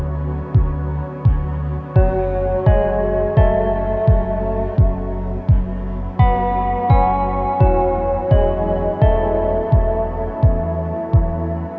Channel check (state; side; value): identical; both; correlation 1.00